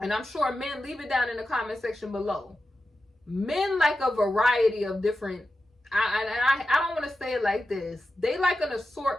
I'm sure men, leave it down in the comment section below. Men like a variety of different, I don't want to say it like this. They like an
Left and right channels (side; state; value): both; normal; correlation 0.91